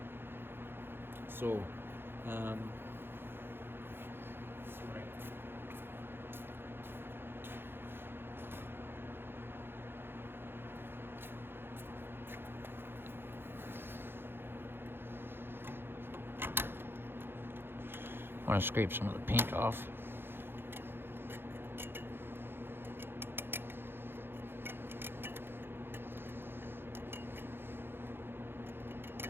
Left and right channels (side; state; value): left; late; 0.10 ms